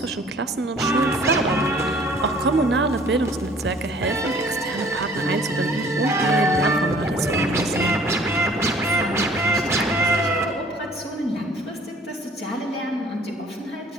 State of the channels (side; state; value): both; normal; correlation 0.54